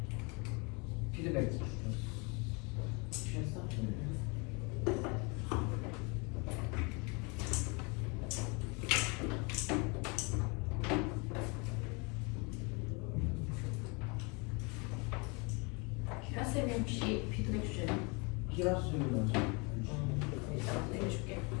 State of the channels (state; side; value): quieter; right; 30.5 dB